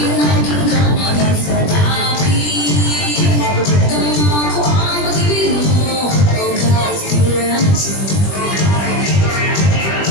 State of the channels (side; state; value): right; late; 20 ms